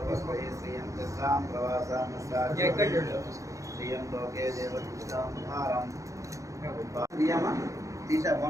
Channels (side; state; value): left; late; 0.15 ms